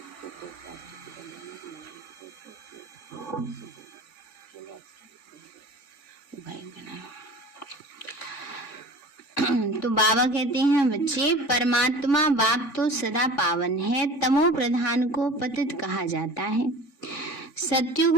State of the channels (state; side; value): late; right; 3.6 ms